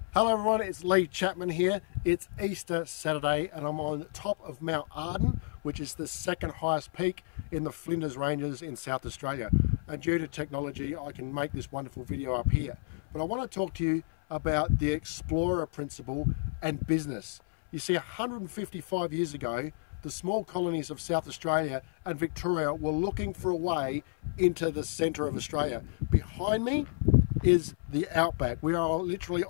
Hello everyone, it's Lee Chapman here. It's Easter Saturday and I'm on top of Mount Arden, which is the second highest peak in the Flinders Ranges in South Australia. And due to technology, I can make this wonderful video up here. But I want to talk to you about the explorer principle and business. You see, 155 years ago, the small colonies of South Australia and Victoria were looking for a way into the centre of Australia. Behind me is the outback. We are literally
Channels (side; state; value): right; silent; 57 dB below the other